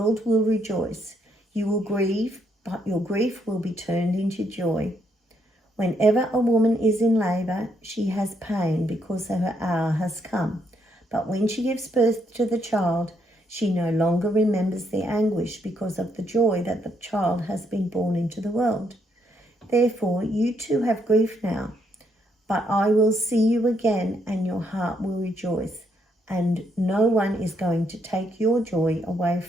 will rejoice. You will grieve, but your grief will be turned into joy. Whenever a woman is in labour, she has pain because her hour has come. But when she gives birth to the child, she no longer remembers the anguish because of the joy that the child has been born into the world. Therefore, you too have grief now, but I will see you again, and your heart will rejoice, and no one is going to take your joy away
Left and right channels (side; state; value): both; normal; correlation 0.74